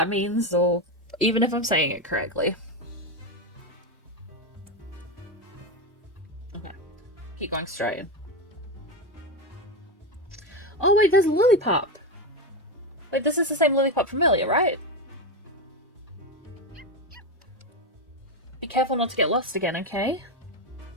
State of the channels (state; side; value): normal; both; correlation 0.13